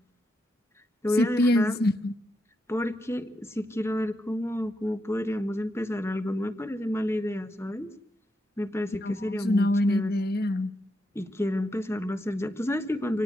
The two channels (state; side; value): normal; both; correlation 0.83